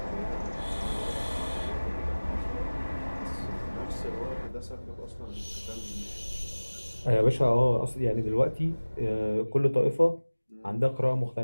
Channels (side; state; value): both; inverted; correlation -1.00